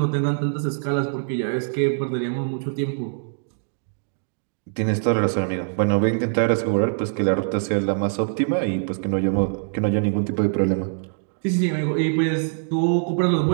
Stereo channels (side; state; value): left; silent; digital silence